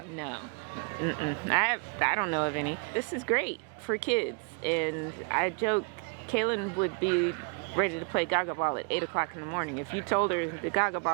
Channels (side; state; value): left; quieter; 33.9 dB